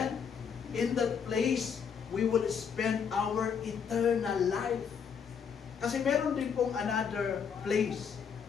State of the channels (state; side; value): quieter; right; 6.9 dB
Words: In that place, we will spend our eternal life. Kasi meron din pong another place,